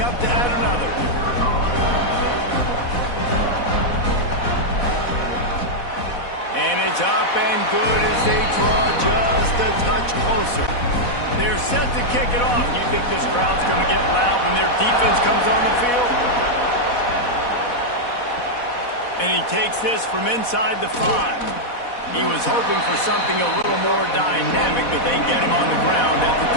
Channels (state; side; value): late; right; 4.1 ms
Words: up to add another. And it's up and good as they draw just a touch closer. They're set to kick it off. You think this crowd's going to get loud when their defense comes on the field? And he takes this from inside the 5. He was hoping for something a little more dynamic, but they get him on the ground at the